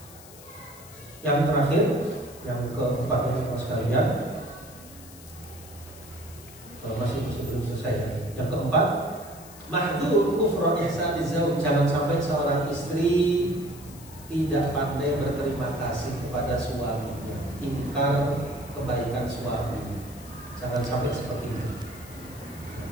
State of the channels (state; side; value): noise; left; hiss, 19 dB below the sound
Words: Yang terakhir, yang keempat sekalian, masih belum selesai. Yang keempat, mahdzur kufra ihsani zauj, jangan sampai seorang istri tidak pandai berterima kasih kepada suaminya, ingkar kebaikan suami. Jangan sampai seperti itu.